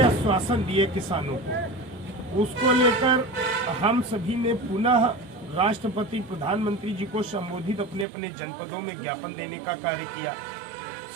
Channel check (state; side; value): drops out; left; at 8.1 s